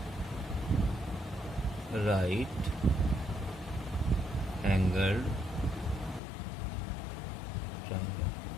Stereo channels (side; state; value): right; drops out; at 6.2 s